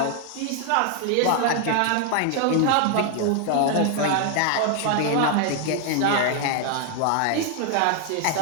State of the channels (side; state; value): both; different; correlation 0.00